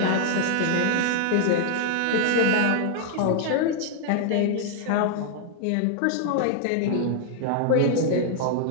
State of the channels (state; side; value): different; both; correlation 0.00